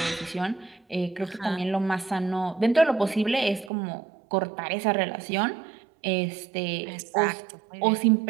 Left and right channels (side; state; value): left; drops out; at 3.7 s